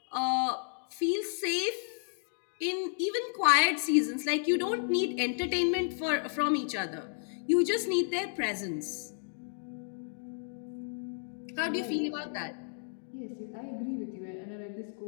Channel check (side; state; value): right; silent; digital silence